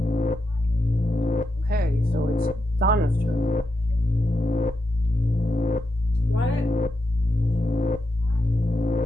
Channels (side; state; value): both; normal; correlation 0.85